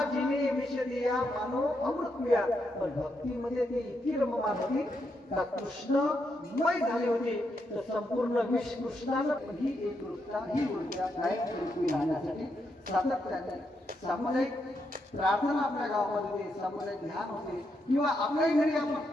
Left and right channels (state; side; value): normal; both; correlation 0.81